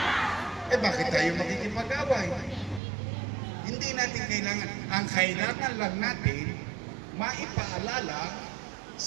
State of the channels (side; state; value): left; drops out; at 2.8 s